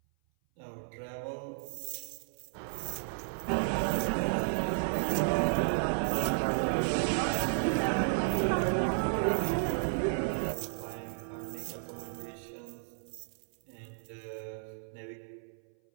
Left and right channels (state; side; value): silent; left; 56 dB below the other